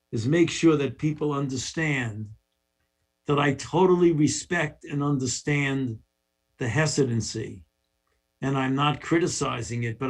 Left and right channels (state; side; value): identical; both; correlation 1.00